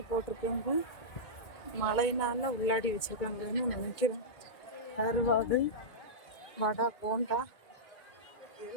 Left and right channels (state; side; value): late; right; 2.1 ms